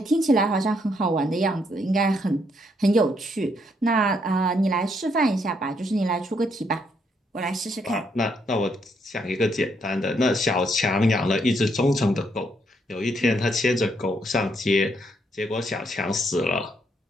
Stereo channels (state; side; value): normal; both; correlation 0.74